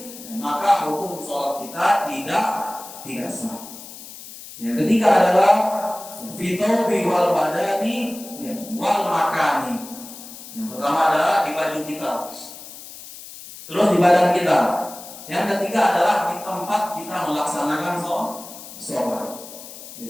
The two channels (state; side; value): noise; left; hiss, 15 dB below the sound